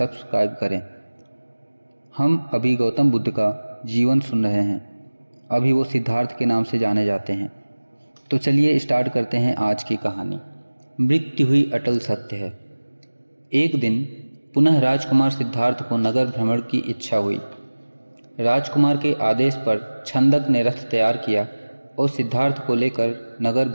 करें। हम अभी गौतम बुद्ध का जीवन सुन रहे हैं। अभी वो सिद्धार्थ के नाम से जाने जाते हैं। तो चलिए स्टार्ट करते हैं आज की कहानी। मृत्यु हुई अटल सत्य है। एक दिन पुनः राजकुमार सिद्धार्थ को नगर भ्रमण की इच्छा हुई। राजकुमार के आदेश पर छंदक ने रथ तैयार किया और सिद्धार्थ को लेकर नगर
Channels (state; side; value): inverted; both; correlation -1.00